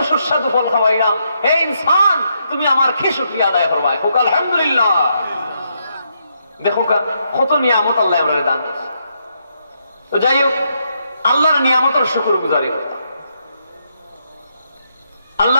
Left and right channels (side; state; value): both; inverted; correlation -0.78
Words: সুস্বাদু ফল খাওয়াইলাম, হে ইনসান তুমি আমার কি শুকরিয়া আদায় করবা, হোক আলহামদুলিল্লাহ। দেখো কত নিয়ামত আল্লাহ আমরা দান দিয়েছে। তো যাই হোক, আল্লাহর নিয়ামতের শুকর গুজারি করতাম।